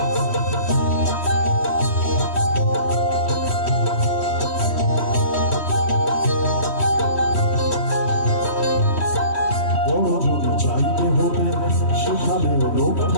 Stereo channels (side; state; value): right; late; 3.1 ms